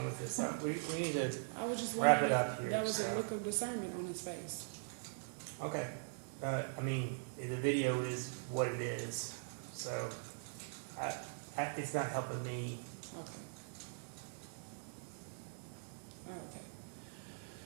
with this? We need to, I was just Wrap wondering it up if here, that was so. a look of discernment on his face. okay. I mean, the video is what it is, so it's not helping me. Okay. Okay.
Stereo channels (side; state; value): left; silent; digital silence